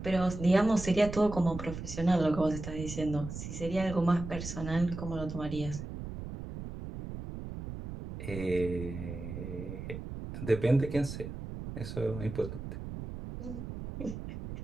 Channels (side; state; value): right; noise; rumble, 8 dB below the sound